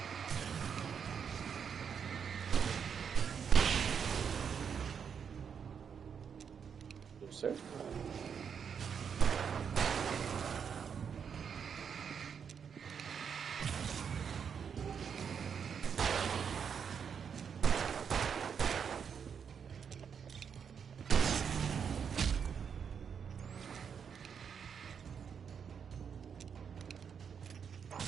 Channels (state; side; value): quieter; left; 7.1 dB